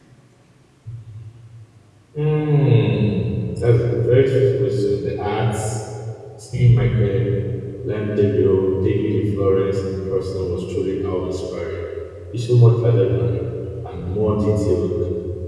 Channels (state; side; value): identical; both; correlation 1.00